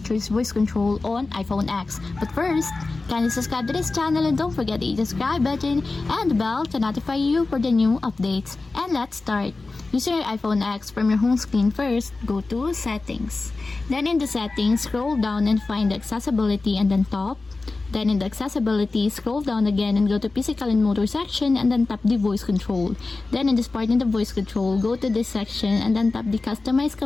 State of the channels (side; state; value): right; quieter; 3.6 dB